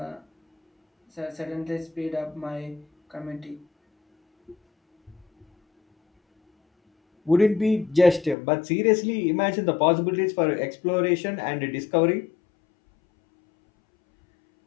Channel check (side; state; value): right; drops out; at 8.3 s